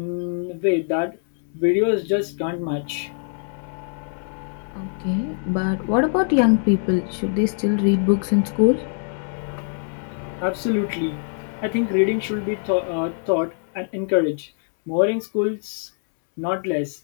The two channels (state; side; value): silent; right; 63 dB below the other